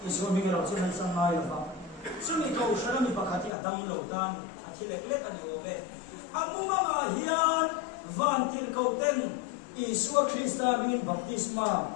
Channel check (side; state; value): right; drops out; at 3.5 s